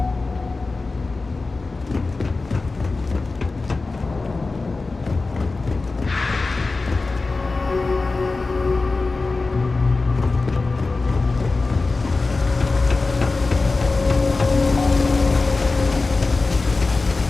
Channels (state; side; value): quieter; right; 3.7 dB